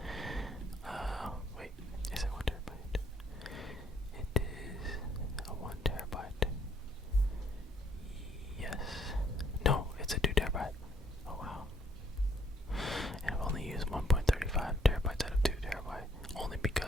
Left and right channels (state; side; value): normal; both; correlation 0.66